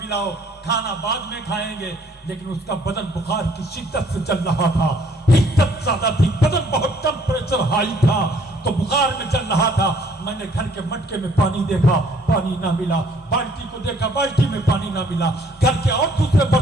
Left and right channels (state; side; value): normal; both; correlation 0.61